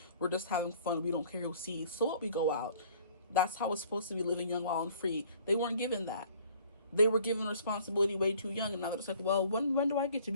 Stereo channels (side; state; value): both; inverted; correlation -0.55